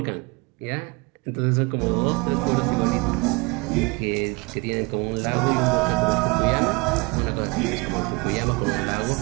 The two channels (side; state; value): left; quieter; 27.8 dB